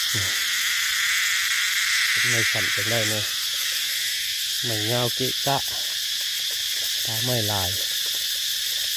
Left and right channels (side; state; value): both; identical; correlation 1.00